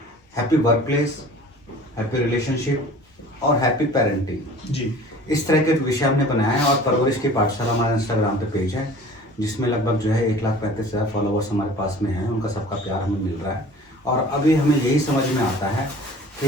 happy work place, happy relationship और हैप्पी पेरेंटिंग जी। इस तरह के विषय हमने बनाया है। और परवरिश की पाठशाला हमारा इंस्टाग्राम पे पेज है जिसमें लगभग जो है 1,35,000 फॉलोवर्स हमारे पास में हैं। उनका सबका प्यार हमें मिल रहा है और अभी हमें यही समझ में आता है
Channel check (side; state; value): both; normal; correlation 0.45